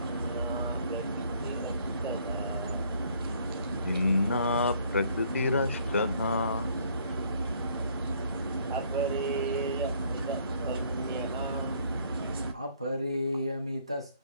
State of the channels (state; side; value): inverted; both; correlation -0.63